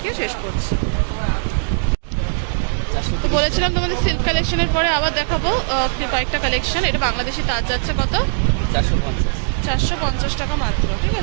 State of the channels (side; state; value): left; silent; digital silence